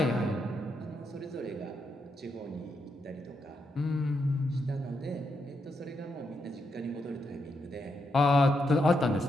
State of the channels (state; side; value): normal; both; correlation 0.81